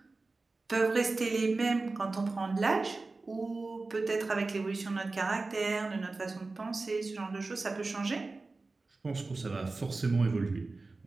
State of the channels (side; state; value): left; quieter; 3.6 dB